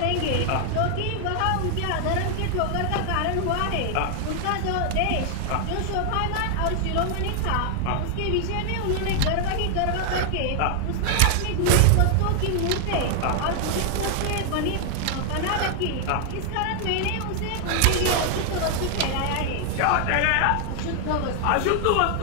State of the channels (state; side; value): different; both; correlation 0.00